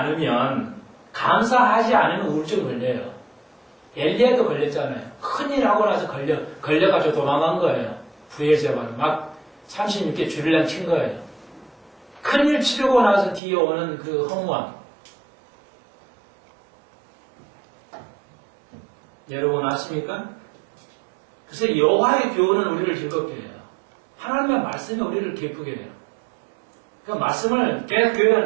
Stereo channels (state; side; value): drops out; left; at 13.4 s